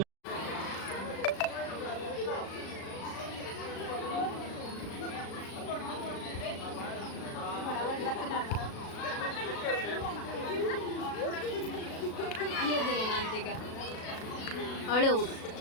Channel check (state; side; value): late; right; 36 ms